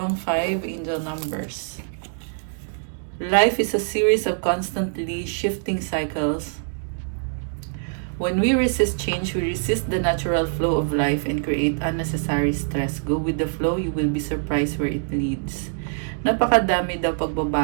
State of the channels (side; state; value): left; silent; digital silence